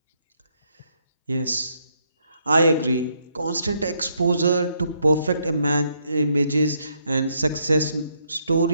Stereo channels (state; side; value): inverted; both; correlation -0.74